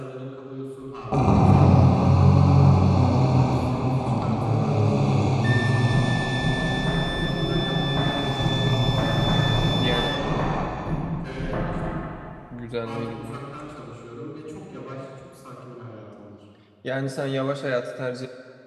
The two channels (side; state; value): both; identical; correlation 1.00